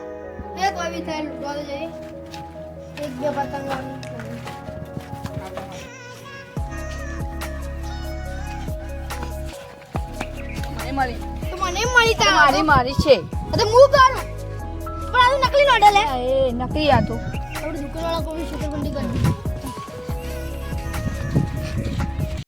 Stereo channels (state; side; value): identical; both; correlation 1.00